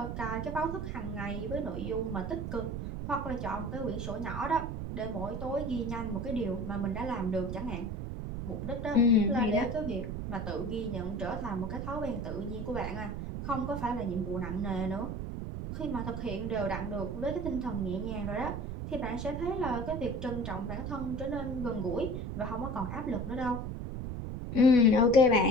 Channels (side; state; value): right; noise; rumble, 5 dB below the sound